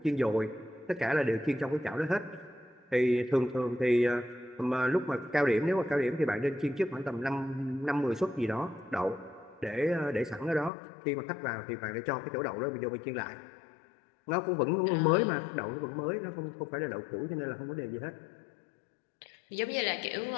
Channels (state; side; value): drops out; right; at 10.7 s